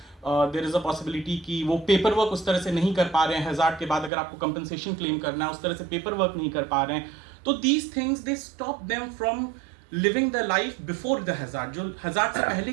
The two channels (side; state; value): left; drops out; at 4.1 s